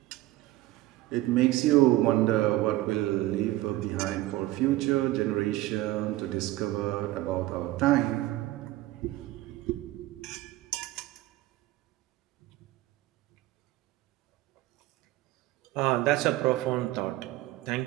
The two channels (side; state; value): left; quieter; 16.9 dB